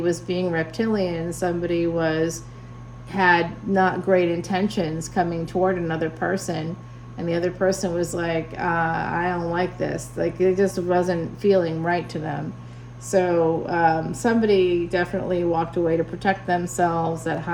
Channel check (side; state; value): both; identical; correlation 1.00